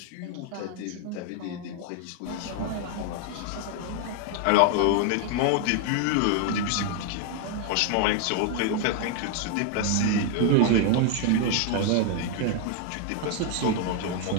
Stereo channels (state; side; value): different; both; correlation 0.00